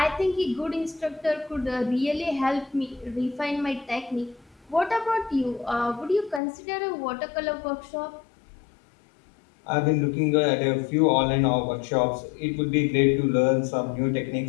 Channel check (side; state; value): right; drops out; at 6.4 s